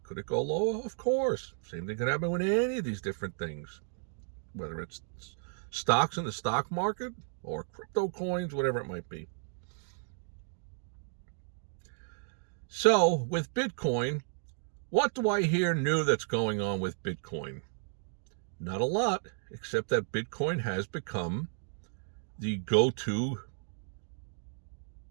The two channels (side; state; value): left; silent; digital silence